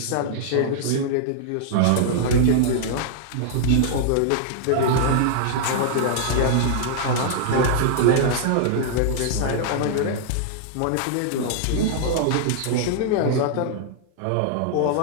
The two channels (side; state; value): both; different; correlation -0.01